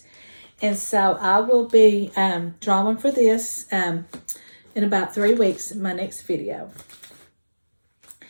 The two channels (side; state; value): both; inverted; correlation -1.00